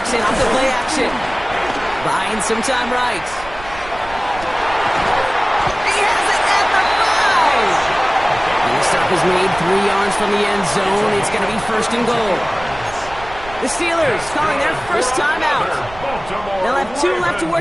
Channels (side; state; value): right; noise; rumble, 16 dB below the sound